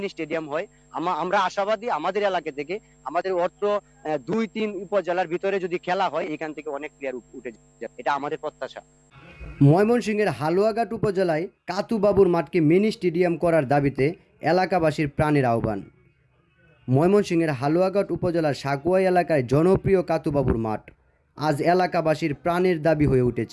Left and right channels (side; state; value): both; identical; correlation 1.00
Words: স্টেডিয়াম হয়, আমরা আশাবাদী আমাদের এলাকা থেকে, আমাদের অর্থ 2-3 উপজেলার ভিতরে যদি খেলা হয় এখান থেকে অনেক প্লেয়ার উঠে যাবে, এটা আমাদের প্রত্যাশা। ময়মনসিংহের হালুয়াঘাট উপজেলায় কাতুবাবুর মাঠকে মিনি স্টেডিয়াম করার দাবিতে এলাকাবাসীর প্রাণের আহ্বান। ময়মনসিংহের হালুয়াঘাট উপজেলার সাকুয়াই এলাকায় জনপ্রিয় কাতুবাবুর মাঠ আজ এলাকাবাসীর প্রাণের দাবি হয়ে